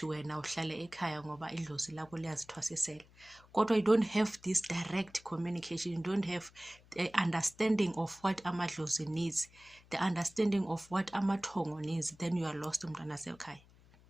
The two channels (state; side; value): noise; left; hum, 26 dB below the sound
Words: wena uhlala ekhaya ngoba idlozi lakho liyazithwasisela, kodwa you don't have this direct communication, you don't have the understanding of what amadlozi needs, the understanding of what amathongo needs, then you are lost umntwana sekhaya.